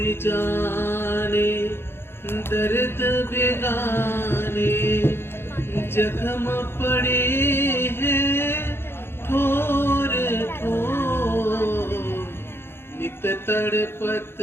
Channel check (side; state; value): right; late; 0.11 ms